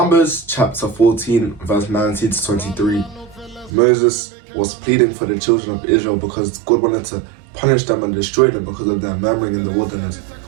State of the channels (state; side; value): drops out; left; at 3.7 s